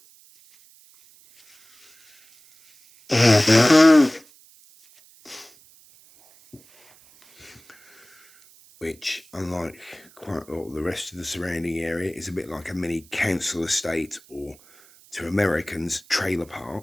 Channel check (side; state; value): right; noise; hiss, 27 dB below the sound